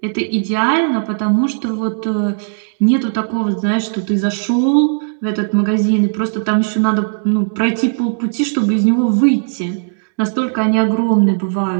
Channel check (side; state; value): left; silent; digital silence